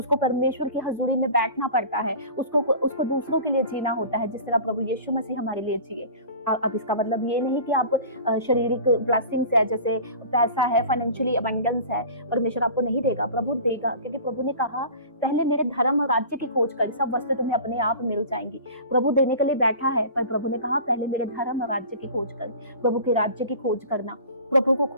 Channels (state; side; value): inverted; both; correlation -0.39